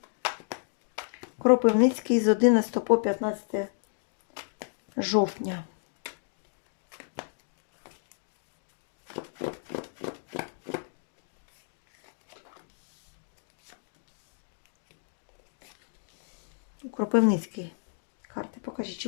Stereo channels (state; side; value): silent; right; digital silence